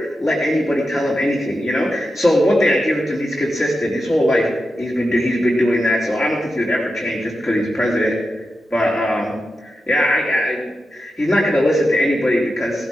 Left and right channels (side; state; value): both; normal; correlation 0.90